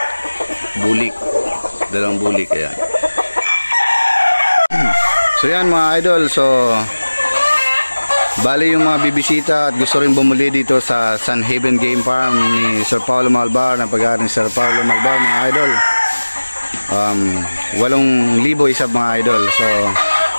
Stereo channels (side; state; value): both; inverted; correlation -1.00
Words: Bulik. Dalawang bulik. Ayan. So yan mga idol. So bali yung mga bibisita at gusto rin bumuli dito sa Sun Haven Game Farm ni Sir Paulo Malbar, ng pag-aaral ni Sir Paulo Malbar mga idol. 8,000 isa mga idol. So